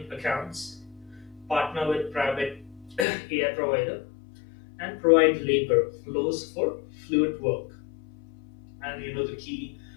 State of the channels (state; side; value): drops out; right; at 3.1 s